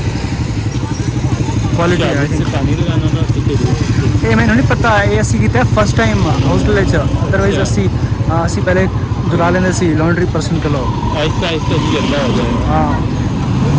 क्वालिटी है। से पानी लगाना था ठीक है। ये मैंने नहीं पता ये असी की फर्स्ट टाइम हॉस्टल अदरवाइज असी पहले दुला लेंगे सी लॉन्ड्री पर्सन के लोग। आहिस्ता आहिस्ता ही गंदा हो जाएगा। हाँ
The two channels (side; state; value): both; identical; correlation 1.00